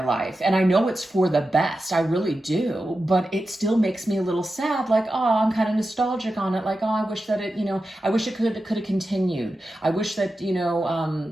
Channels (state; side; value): normal; both; correlation 0.91